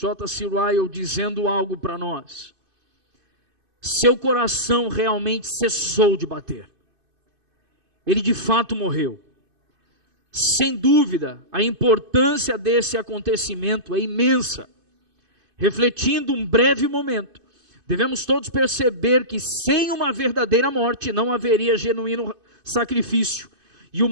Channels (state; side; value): late; left; 2.5 ms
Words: Ryle dizendo algo para nós. Seu coração realmente cessou de bater. Ele de fato morreu. Sem dúvida, a importância desse acontecimento é imensa. Refletindo um breve momento, Devemos todos perceber que sem uma verdadeira morte não haveria genuíno sacrifício e